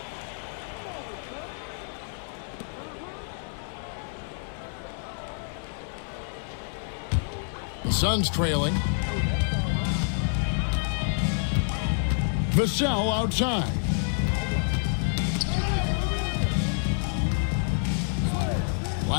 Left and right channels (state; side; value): silent; right; 59 dB below the other